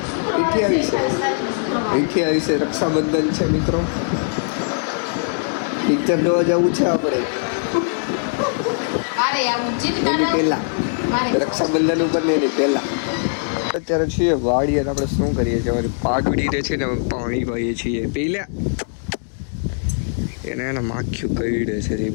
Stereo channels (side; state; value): right; silent; digital silence